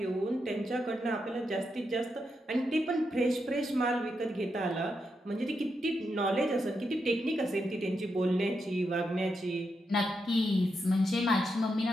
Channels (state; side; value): normal; both; correlation 0.84